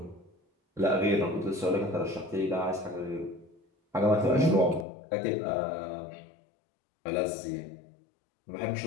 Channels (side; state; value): right; drops out; at 4.9 s